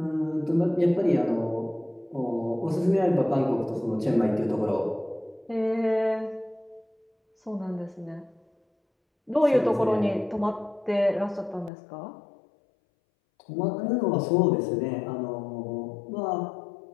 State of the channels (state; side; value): drops out; right; at 11.7 s